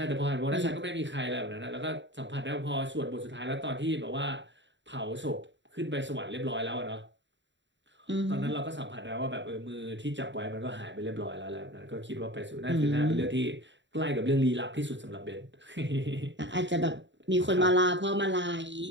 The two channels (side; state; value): left; late; 0.53 ms